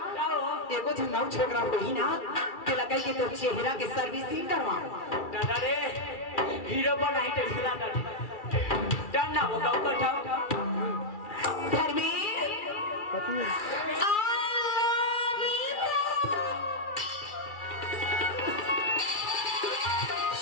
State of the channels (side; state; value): right; late; 2.3 ms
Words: एगो झंगाऊ छोकरा होई ना के लगे कि तो चेहरा के सर्विसिंग करवा दादा रे हीरो बनाई तो हिला दादा डन ना होगा कठाओ घर में